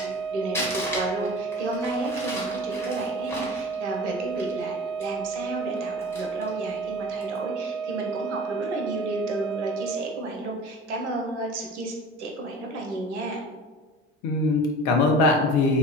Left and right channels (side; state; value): both; normal; correlation 0.39